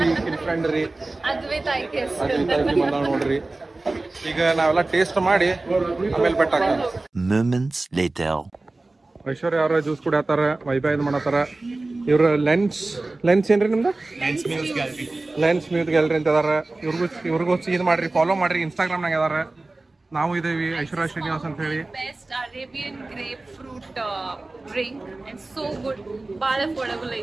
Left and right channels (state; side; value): quieter; left; 3.1 dB